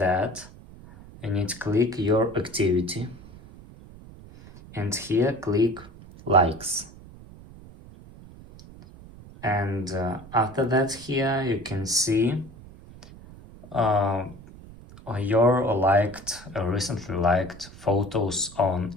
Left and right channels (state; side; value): noise; right; rumble, 19 dB below the sound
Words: you need to click your activity and here click likes. And after that here you can see your recently liked photos on